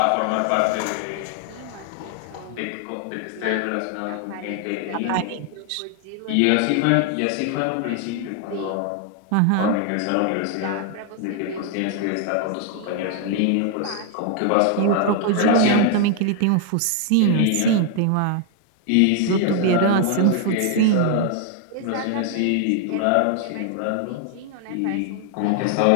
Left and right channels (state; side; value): different; both; correlation 0.00